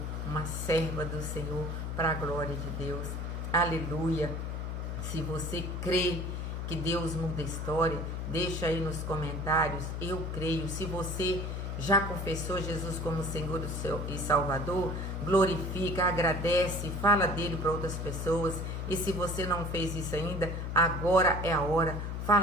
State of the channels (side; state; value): left; noise; hum, 3 dB below the sound